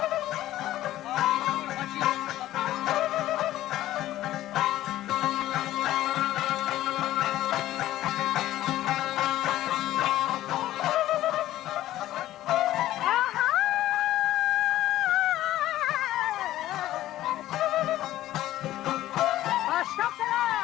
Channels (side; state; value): right; quieter; 14.3 dB